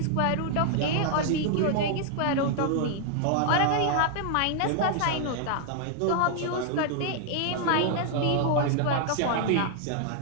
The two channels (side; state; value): both; different; correlation 0.00